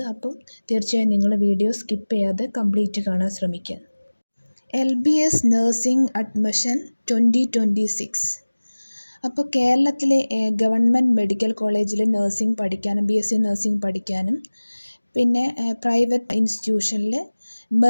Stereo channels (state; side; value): inverted; both; correlation -1.00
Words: അപ്പം തീർച്ചയായും നിങ്ങൾ വീഡിയോ സ്കിപ്പ് ചെയ്യാതെ കംപ്ലീറ്റ് കാണാൻ ശ്രമിക്കുക. LBS Nursing Admission 2026. അപ്പോൾ കേരളത്തിലെ ഗവൺമെൻറ് മെഡിക്കൽ കോളേജിൽ നഴ്സിംഗ് പഠിക്കാനും BSc നഴ്സിംഗ് പഠിക്കാനും പിന്നെ പ്രൈവറ്റ് ഇൻസ്റ്റിറ്റ്യൂഷനിൽ